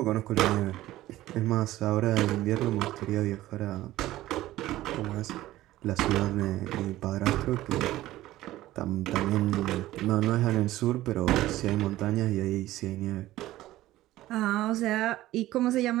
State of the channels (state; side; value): quieter; left; 15.7 dB